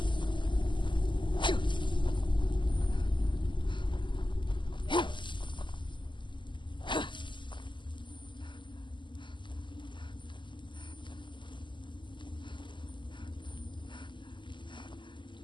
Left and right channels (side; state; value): right; late; 0.23 ms